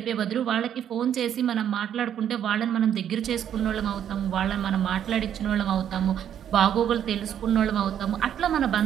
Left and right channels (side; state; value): left; quieter; 9.6 dB